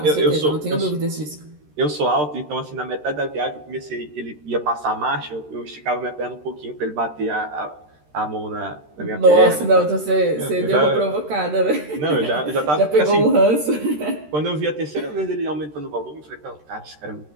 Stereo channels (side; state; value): left; late; 13 ms